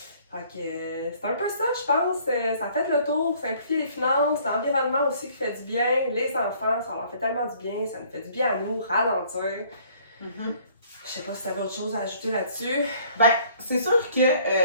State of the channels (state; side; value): inverted; both; correlation -0.59